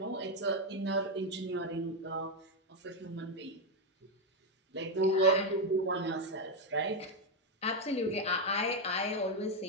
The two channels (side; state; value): both; normal; correlation 0.05